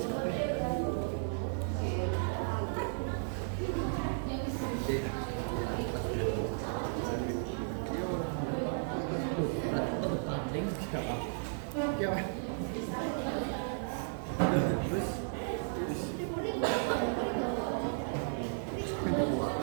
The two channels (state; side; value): silent; left; digital silence